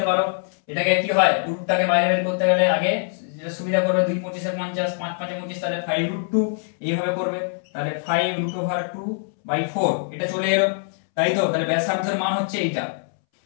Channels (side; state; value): right; silent; 63 dB below the other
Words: পারো। এটাকে কি হয় রুটটাকে বাইরে বের করতে গেলে আগে যেটা সুবিধা করবে 2 25 50 5 5 25, তাহলে 5√2 এইভাবে করবে, তাহলে 5√2/4 এটা চলে এলো, তাই তো। তাহলে ব্যাসার্ধের মান হচ্ছে এইটা।